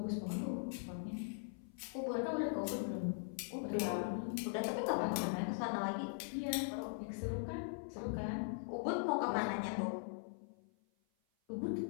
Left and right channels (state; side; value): silent; right; 51 dB below the other